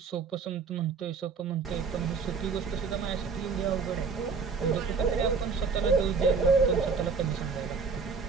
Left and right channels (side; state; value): left; quieter; 5.1 dB